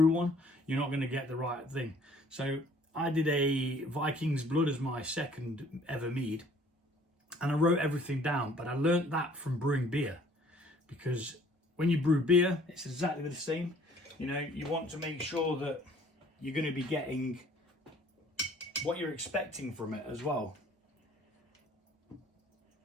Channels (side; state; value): both; normal; correlation 0.57